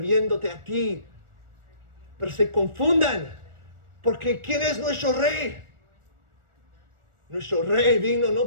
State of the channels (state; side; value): late; left; 1.4 ms